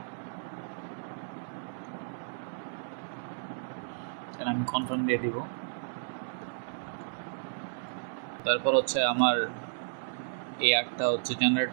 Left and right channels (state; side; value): silent; left; digital silence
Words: দেন আমি কনফার্ম দিয়ে দিব। তারপর হচ্ছে আমার এই আর্টটা হচ্ছে জেনারেট